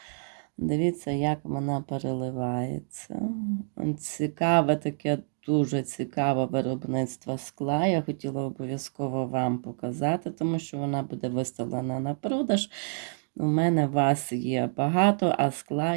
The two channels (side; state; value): left; silent; digital silence